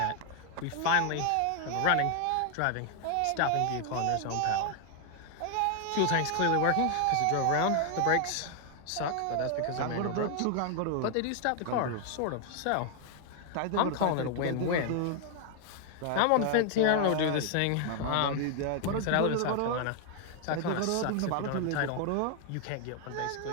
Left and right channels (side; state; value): both; different; correlation 0.00